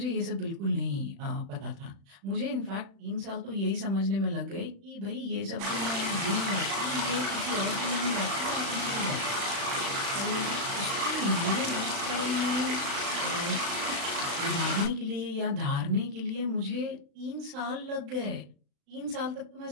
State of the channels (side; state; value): left; late; 36 ms